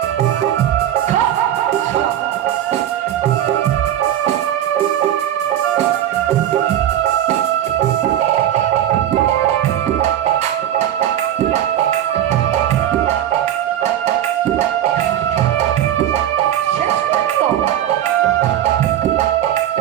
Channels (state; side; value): quieter; left; 11.4 dB